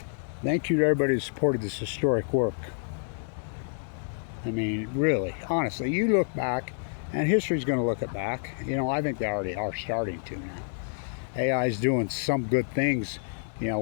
thank you to everybody who supported this historic work. I mean, really, honestly, you look back, and history's going to look it back. You know, I think they already are starting to now. AI is doing some good things, you know,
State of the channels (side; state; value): right; silent; digital silence